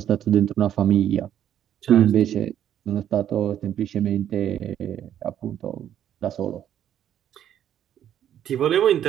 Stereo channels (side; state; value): left; quieter; 10.4 dB